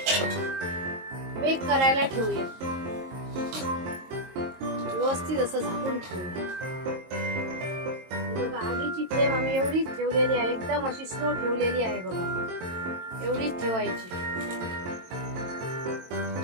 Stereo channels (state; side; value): late; left; 22 ms